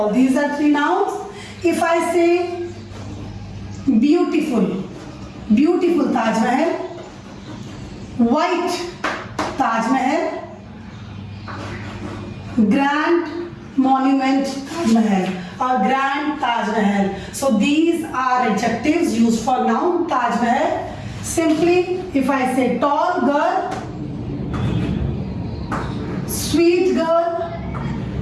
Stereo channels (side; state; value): both; identical; correlation 1.00